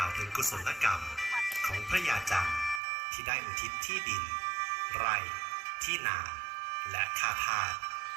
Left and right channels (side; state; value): left; drops out; at 2.8 s